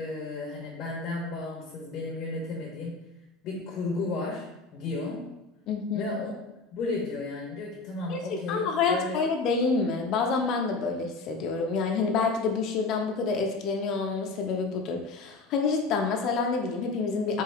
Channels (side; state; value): right; quieter; 3.9 dB